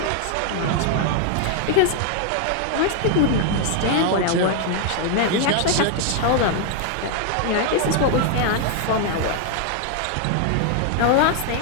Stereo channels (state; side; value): different; both; correlation 0.00